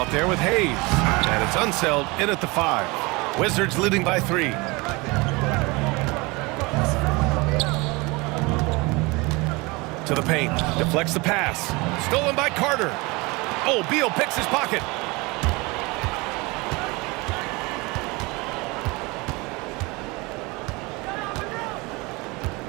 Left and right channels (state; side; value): quieter; left; 25.1 dB